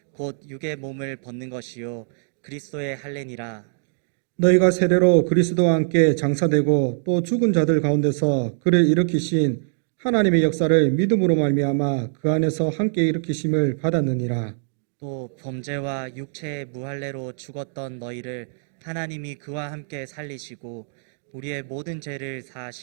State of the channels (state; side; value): silent; left; digital silence